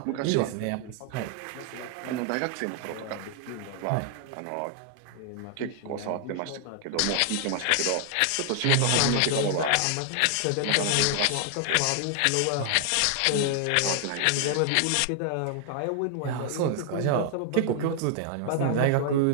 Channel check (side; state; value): both; different; correlation 0.00